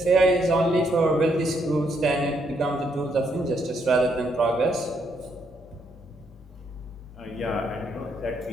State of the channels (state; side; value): normal; both; correlation 0.74